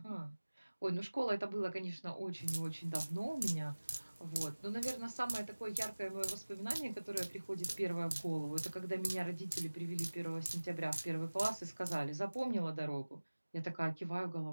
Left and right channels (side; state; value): both; inverted; correlation -1.00